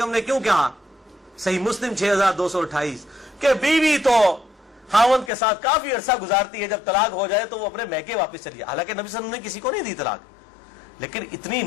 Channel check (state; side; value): drops out; right; at 5.3 s